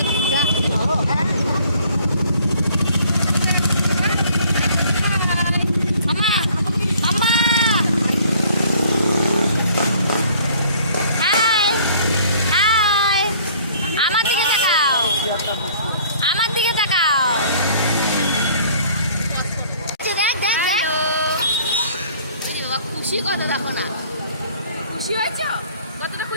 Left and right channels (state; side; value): inverted; both; correlation -0.56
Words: খুশি কত দেখো না, খুশি হয়েছে? কতটা